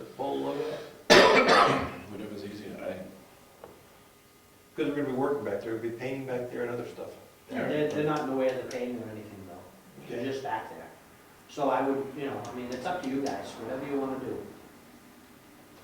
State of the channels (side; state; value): both; identical; correlation 1.00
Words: pull a load out. whatever's easier. Because we're gonna be working back there, we'll be painting back there and other stuff. They're not in the way of the painting or anything though, they're just back there. So I would, it's up to you guys, whatever you wanna do.